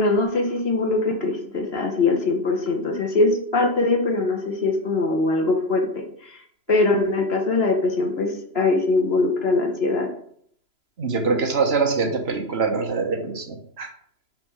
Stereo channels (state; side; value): late; left; 3.0 ms